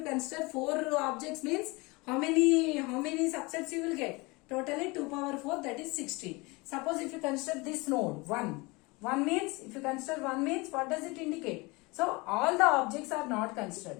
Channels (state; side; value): quieter; right; 25.4 dB